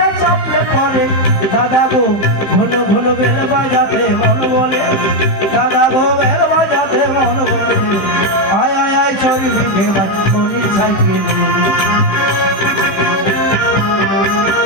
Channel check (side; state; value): right; late; 16 ms